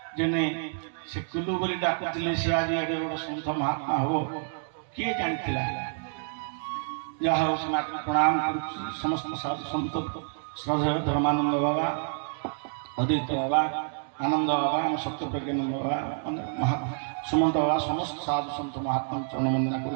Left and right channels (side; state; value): left; silent; digital silence